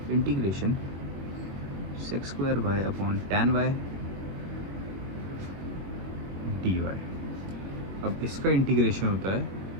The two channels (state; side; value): late; left; 21 ms